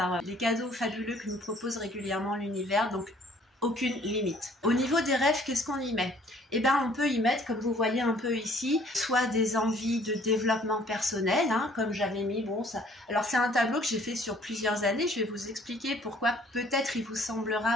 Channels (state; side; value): normal; both; correlation 0.58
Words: les cadeaux fabuleux que nous propose régulièrement l'univers, donc aucune limite. Au niveau des rêves, qu'est-ce qu'on y met? On peut y mettre, comme vous voyez un peu ici, soit des envies de développement personnel, comme j'avais mis, alors c'est un tableau que j'ai fait sur plusieurs années, je vais vous expliquer pourquoi peut-être il vous